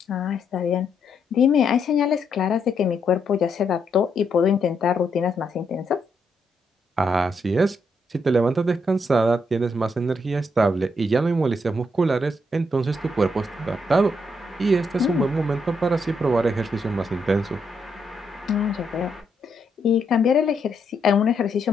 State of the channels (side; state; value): both; normal; correlation 0.77